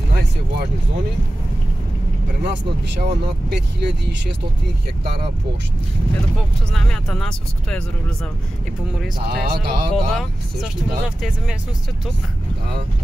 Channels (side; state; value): both; normal; correlation 0.95